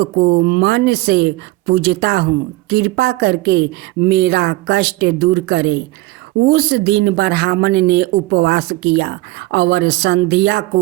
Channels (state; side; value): quieter; left; 19.8 dB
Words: मन से पूजता हूँ, कृपा करके मेरा कष्ट दूर करें। उस दिन ब्राह्मण ने उपवास किया और संध्या